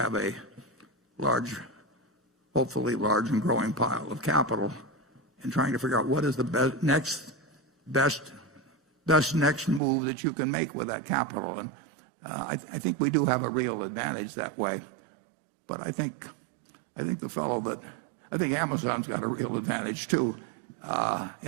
a hopefully large and growing pile of capital, and trying to figure out what is the best next move that you can make with that capital. And I think we do have a real advantage that way. But I think Amazon's got a real advantage too,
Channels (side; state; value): left; drops out; at 9.8 s